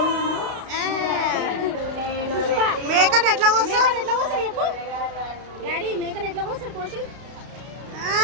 మేకని ఎట్లా కోస్తారు చెప్పు డాడీ. మేకని ఎట్లా కోస్తారు కోసి?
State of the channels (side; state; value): left; late; 32 ms